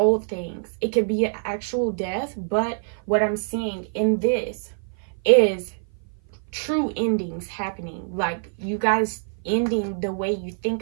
things. It could be an actual death, but what I'm seeing in this is true endings happening. Like you guys ending the way you think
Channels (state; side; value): silent; left; 56 dB below the other